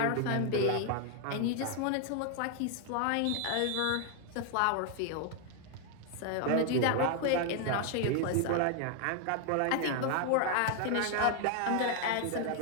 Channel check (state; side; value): different; both; correlation 0.01